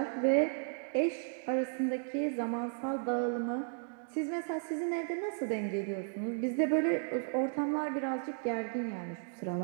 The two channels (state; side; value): silent; left; digital silence